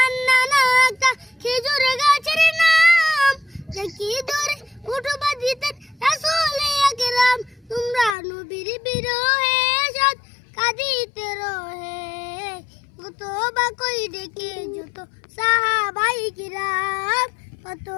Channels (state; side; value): drops out; right; at 8.2 s